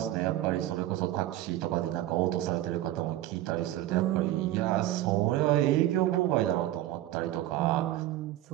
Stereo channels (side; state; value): left; quieter; 14.4 dB